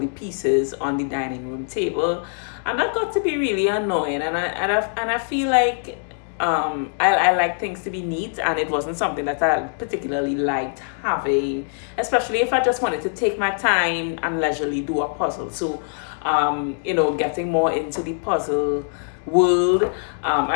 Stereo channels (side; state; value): right; silent; digital silence